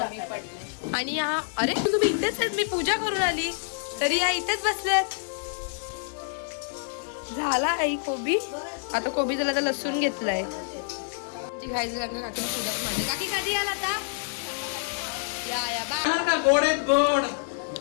आणि हा अरे तुम्ही इथेच आहेत. मी पूजा करून आली तरी या इथेच बसल्यात. झाला आई कोबी. आता कोबी झाला तर लसूण घेतलाय. खायचं काकी पूजा पण. काकी कधी आला आता? या बा.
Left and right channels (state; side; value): silent; right; digital silence